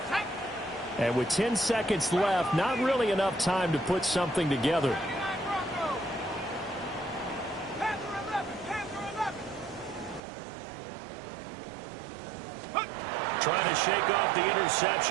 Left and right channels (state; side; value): drops out; left; at 10.2 s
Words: And with 10 seconds left, not really enough time to put something together. Trying to shake off the